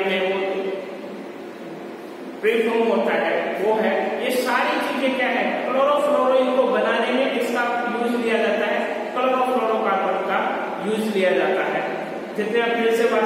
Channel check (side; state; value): both; identical; correlation 1.00